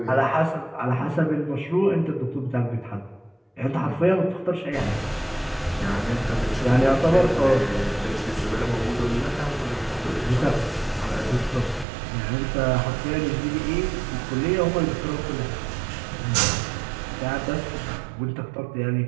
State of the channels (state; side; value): drops out; left; at 11.9 s